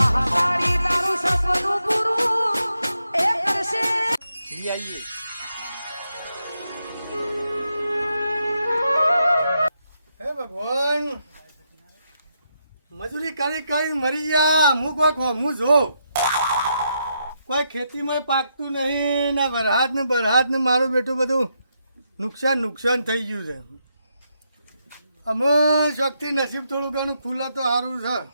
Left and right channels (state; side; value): inverted; both; correlation -0.81